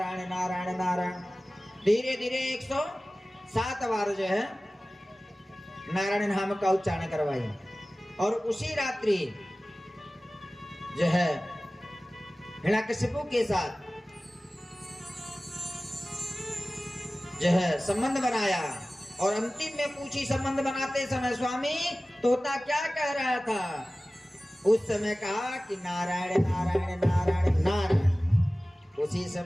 नारायण नारायण। धीरे धीरे 107 बार जो है नारायण नाम का उच्चारण करवाई। और उसी रात्रि जो है हिरण्यकश्यपु के साथ जो है संबंध बनाया। और अंतिम में पूछी संबंध बनाते समय स्वामी तोता क्या कह रहा था? उस समय कहा कि नारायण नारायण नारायण नारायण। उसी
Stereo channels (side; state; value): both; normal; correlation 0.97